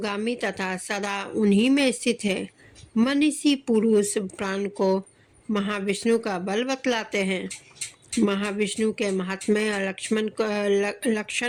तथा सदा उन्हीं में स्थित है। मनीषी पुरुष प्राण को महाविष्णु का बल बतलाते हैं। महाविष्णु के महात्म्य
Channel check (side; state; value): both; identical; correlation 1.00